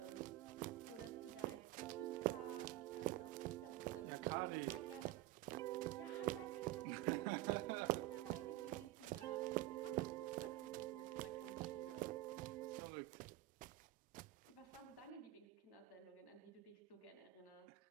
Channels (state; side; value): quieter; left; 16.4 dB